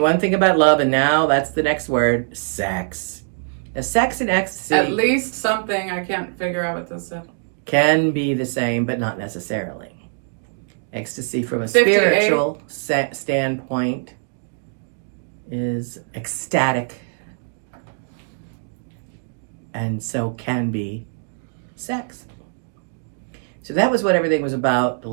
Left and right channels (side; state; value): left; silent; digital silence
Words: thing about love, and now that's the next word, sex. Now, sex and ecstasy At least something. I can't figure out what this said. can be the same, but not necessarily. Ecstasy from a 58. spiritual standpoint is ecstatic, and so can be sex. So that was what everything was about the